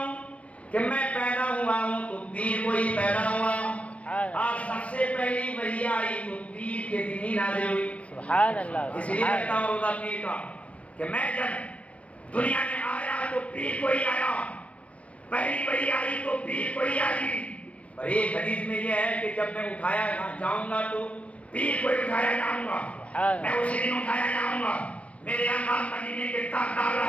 کہ میں پیدا ہوا ہوں تو پیر کو ہی پیدا ہوا، اور سب سے پہلی وحی آئی تو پیر کے دن ہی نازل ہوئی. سبحان اللہ. اس لیے رکھتا ہوں روزہ پیر کا کہ میں جب دنیا میں آیا تو پیر کو ہی آیا، پہلی وحی آئی تو پیر کو ہی آئی. اور ایک حدیث میں یہ ہے کہ جب میں اٹھایا جاؤں گا تو پیر کو ہی اٹھایا جاؤں گا، میں اسی دن اٹھایا جاؤں گا. میرے آقا مدینے کے تاجدار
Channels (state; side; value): late; right; 0.064 ms